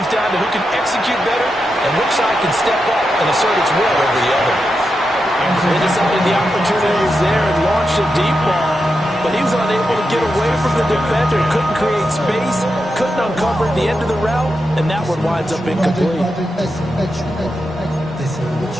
down to who can execute better and which side can step up and assert its will over the other. They decided the opportunity was there and launched a deep ball, but he was unable to get away from the defender, couldn't create space, couldn't uncover the end of the route, and that one winds up incomplete.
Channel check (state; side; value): normal; both; correlation 0.87